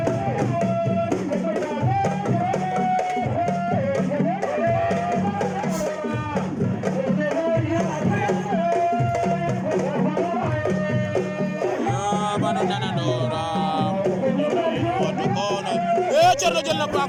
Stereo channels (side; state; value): both; identical; correlation 1.00